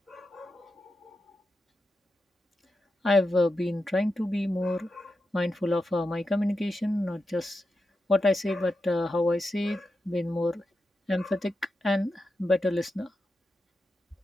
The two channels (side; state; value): both; normal; correlation 0.89